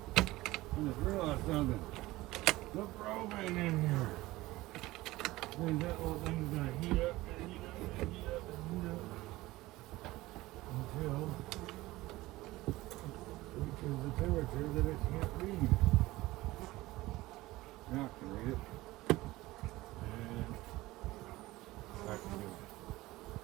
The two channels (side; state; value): left; quieter; 18.6 dB